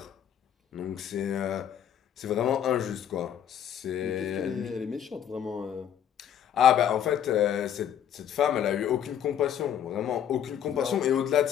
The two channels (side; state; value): right; quieter; 9.5 dB